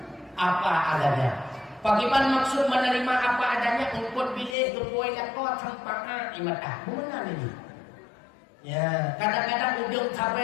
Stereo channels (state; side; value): drops out; right; at 4.5 s